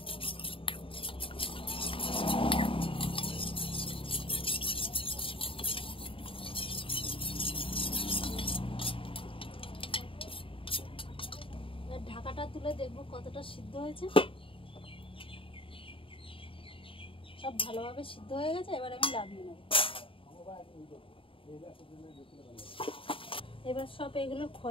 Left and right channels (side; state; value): right; late; 0.26 ms